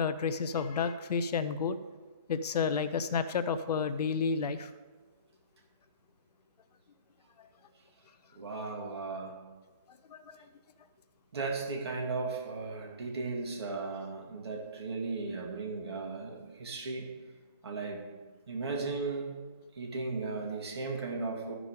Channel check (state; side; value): inverted; both; correlation -0.41